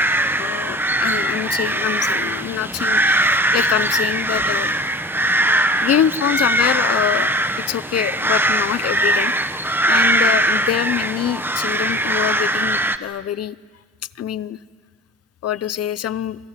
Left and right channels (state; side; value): normal; both; correlation 0.38